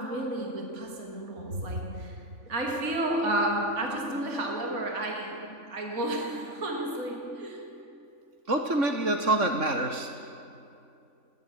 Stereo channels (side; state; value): left; late; 3.5 ms